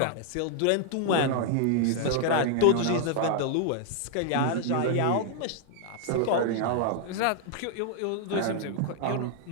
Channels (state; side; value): different; both; correlation 0.00